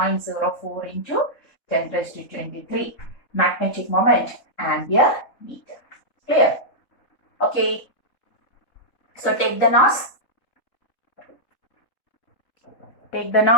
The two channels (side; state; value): right; late; 3.7 ms